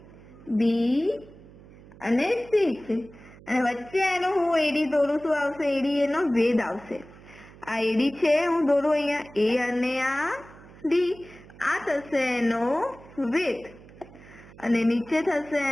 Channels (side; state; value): right; noise; hum, 21 dB below the sound